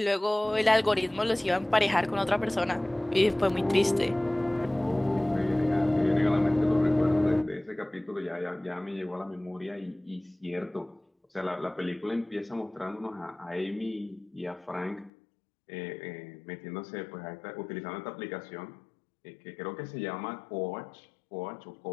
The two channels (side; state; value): right; drops out; at 15.1 s